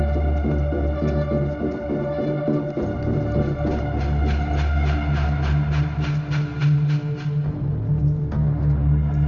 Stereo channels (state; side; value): identical; both; correlation 1.00